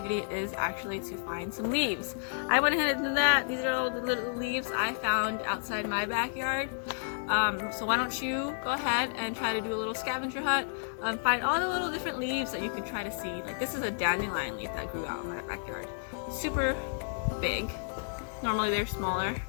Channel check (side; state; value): right; silent; digital silence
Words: is actually to find some leaves. I went ahead and did that. These are all the little leaves I found outside my backyard. So why don't you go ahead and try to do a little scavenger hunt, find all the little different leaves that you can try to see. Like this is a dandelion leaf that grew out in my backyard. Super big. Normally they're smaller,